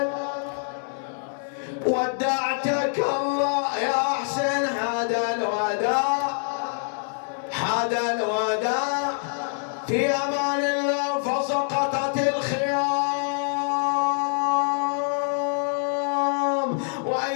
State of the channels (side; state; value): right; silent; digital silence